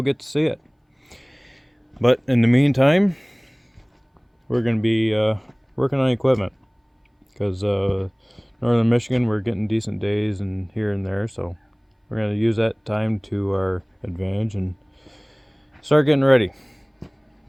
get to see it. But in the meantime, we're going to be working on equipment, because northern Michigan, we're getting decent days and here and there, so we're going to use that time to our advantage and start getting ready.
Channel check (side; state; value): both; identical; correlation 1.00